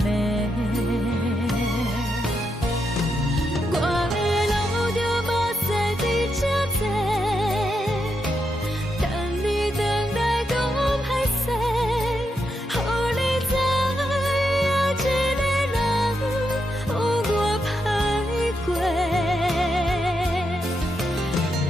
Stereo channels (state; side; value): normal; both; correlation 0.83